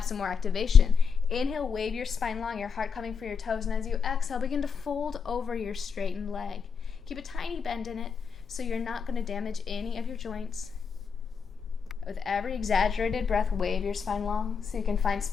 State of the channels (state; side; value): quieter; right; 6.1 dB